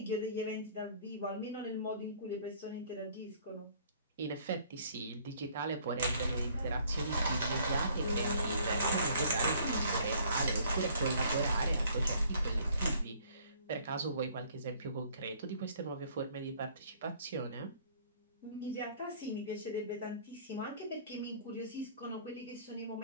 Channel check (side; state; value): both; inverted; correlation -0.58